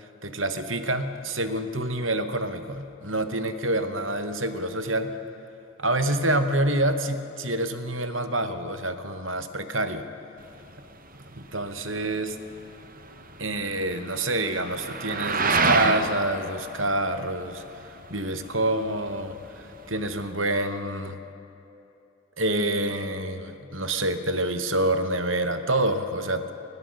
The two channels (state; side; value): normal; both; correlation -0.15